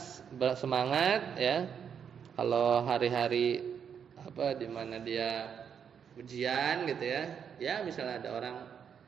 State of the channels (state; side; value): quieter; left; 7.6 dB